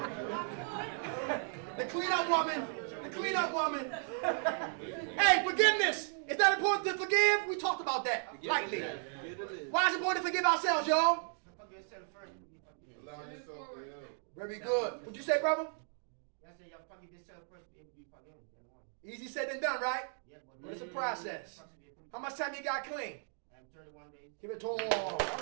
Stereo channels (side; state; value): left; silent; 54 dB below the other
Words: The clean-up woman. The clean-up woman. Hey, forgiveness. Is that important to forgive? We talked about that lightly. Why is it important to forgive ourselves, y'all? Allow yourself to help. Very good. What'd you say, brother? I said y'all forgive yourself first, be able to be forgiven. Easy said than done, right? Yeah, But it's a process. How much time you got clean? 31 days. Give it to him.